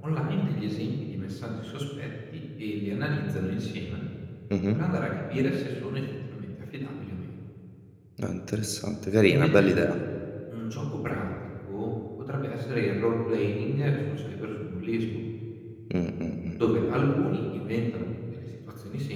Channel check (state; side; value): identical; both; correlation 1.00